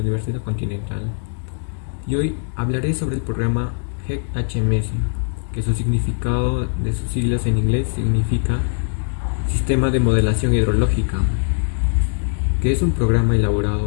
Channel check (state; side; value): silent; right; digital silence